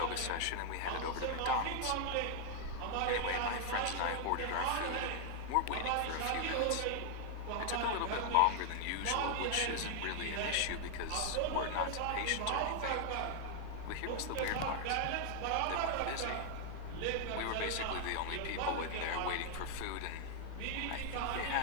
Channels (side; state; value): both; different; correlation 0.00